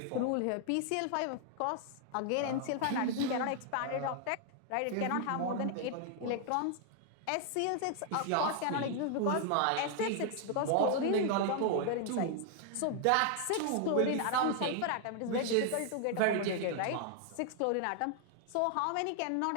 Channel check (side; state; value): both; different; correlation 0.00